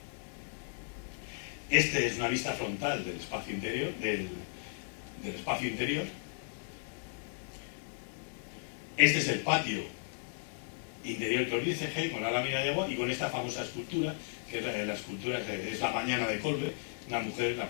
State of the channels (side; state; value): right; silent; digital silence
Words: Este es una vista frontal del espacio interior, del espacio interior. Este es el patio interior que os dice G, con la lámina de agua y con esta famosa escultura, que la escultura es la mañana de Colbe, una mujer, la